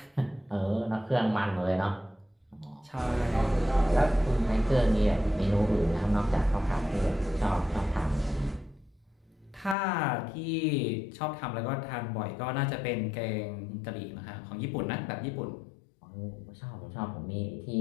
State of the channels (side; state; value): right; drops out; at 9.8 s